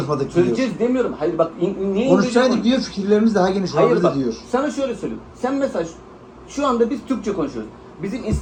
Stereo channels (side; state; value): both; identical; correlation 1.00